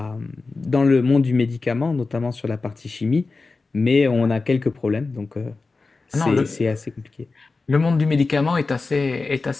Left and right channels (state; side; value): quieter; right; 3.9 dB